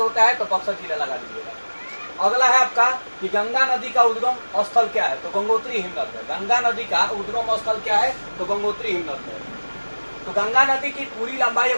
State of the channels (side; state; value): both; inverted; correlation -1.00